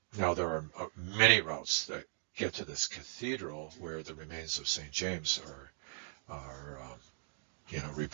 now there are many routes that get to this cathedral where the remains of St. James are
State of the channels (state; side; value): silent; left; 52 dB below the other